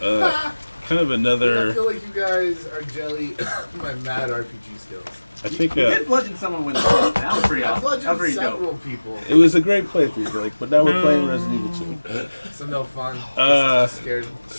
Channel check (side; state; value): both; inverted; correlation -1.00